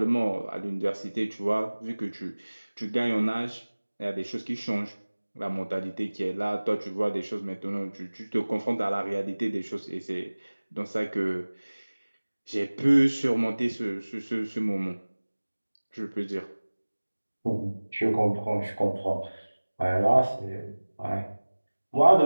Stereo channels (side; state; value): both; inverted; correlation -1.00